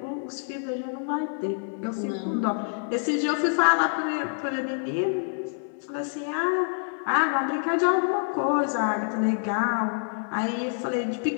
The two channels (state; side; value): silent; right; digital silence